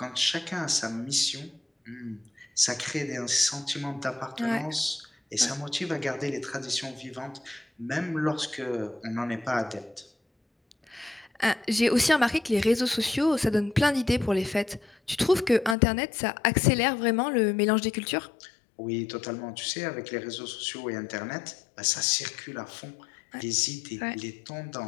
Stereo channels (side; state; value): right; drops out; at 15.8 s